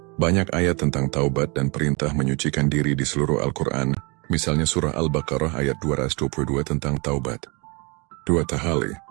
banyak ayat tentang taubat dan perintah menyucikan diri di seluruh Al-Quran. Misalnya surah Al-Baqarah ayat 222 tentang taubat. 2. Tahalli,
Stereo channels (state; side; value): quieter; left; 29.9 dB